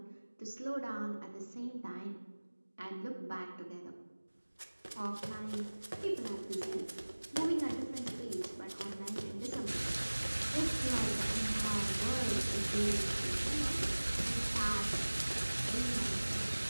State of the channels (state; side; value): inverted; both; correlation -1.00